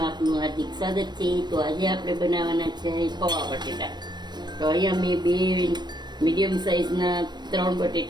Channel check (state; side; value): late; left; 0.21 ms